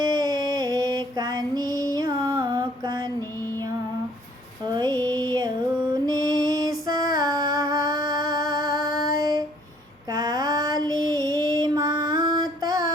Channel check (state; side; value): normal; both; correlation 0.60